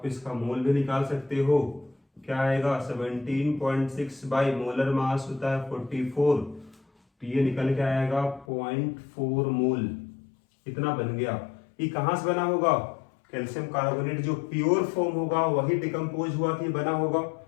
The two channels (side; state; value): right; drops out; at 8.5 s